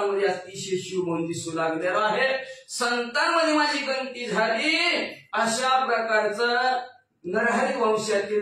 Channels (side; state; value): both; identical; correlation 1.00